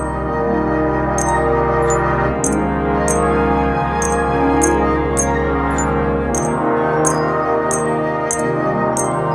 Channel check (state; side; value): identical; both; correlation 1.00